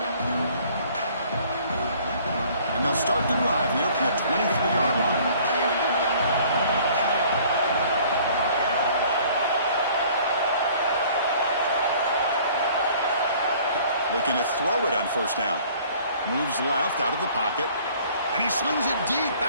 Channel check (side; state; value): both; inverted; correlation -0.54